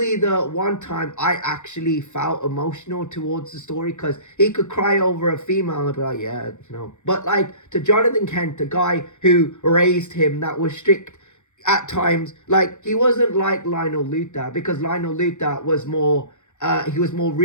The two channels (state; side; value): late; right; 0.84 ms